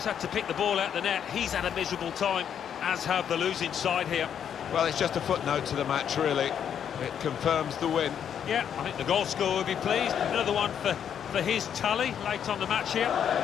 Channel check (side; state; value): right; quieter; 8.6 dB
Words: had to pick the ball out the net, he's had a miserable time, as have the losing side here. Well, it's just a footnote to the match, really. It confirms the win. Yeah, I think the goal scorer will be pleased. Another one for his tally late on the match here.